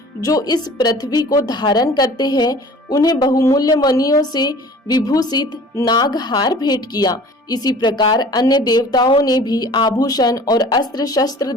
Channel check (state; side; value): normal; both; correlation 0.46